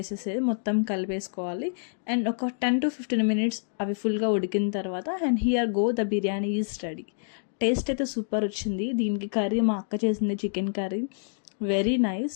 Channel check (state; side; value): silent; right; digital silence